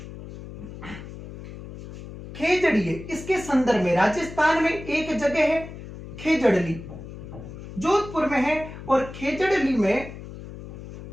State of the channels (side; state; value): left; noise; hum, 13 dB below the sound